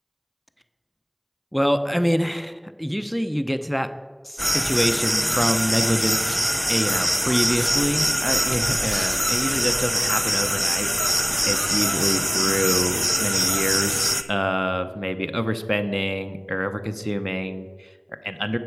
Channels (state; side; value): identical; both; correlation 1.00